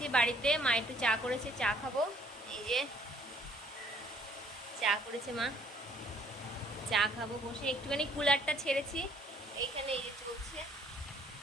বাড়িতে। মা একটু চা করেছে, চা খাবো। এই যে চা করেছে মা, চা খাবো বসে। একটুখানি কুলারটা ছেড়েছি এইখানে, এই যে চলছে,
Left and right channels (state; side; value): normal; both; correlation 0.61